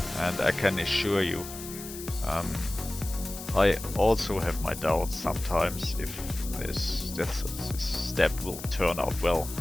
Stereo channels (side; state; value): left; noise; hiss, 12 dB below the sound